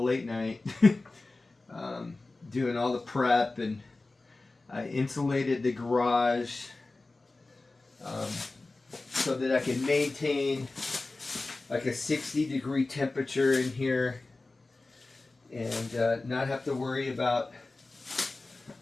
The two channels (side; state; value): right; quieter; 3.3 dB